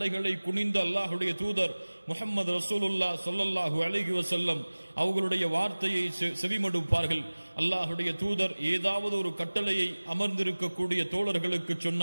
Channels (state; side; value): inverted; both; correlation -1.00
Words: குனிந்த அல்லாஹுடைய தூதர் முஹம்மது ரசூலுல்லாஹ் ஸல்லல்லாஹு அலைஹி வஸல்லம் அவர்களுடைய வார்த்தையை செவிமடுப்பார்கள். அல்லாஹுடைய தூதர் ஏதாவது ஒரு கட்டளையை அமர்ந்திருக்கக்கூடிய தோழர்களுக்கு